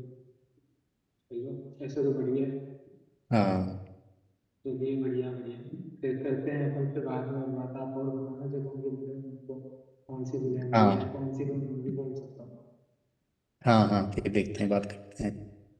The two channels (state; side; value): identical; both; correlation 1.00